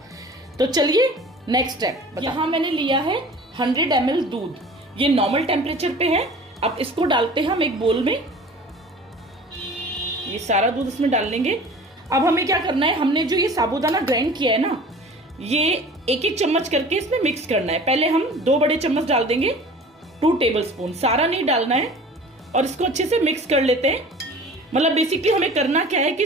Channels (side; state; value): both; normal; correlation 0.42